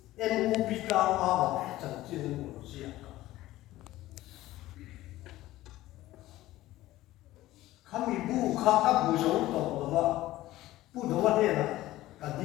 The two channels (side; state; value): right; quieter; 16.2 dB